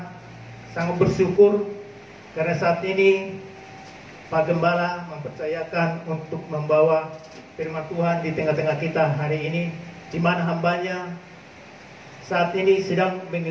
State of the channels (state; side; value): identical; both; correlation 1.00